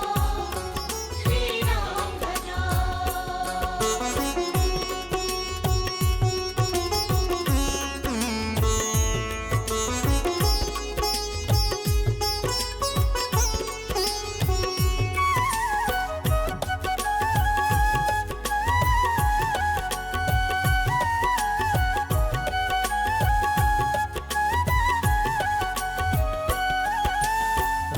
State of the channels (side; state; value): both; identical; correlation 1.00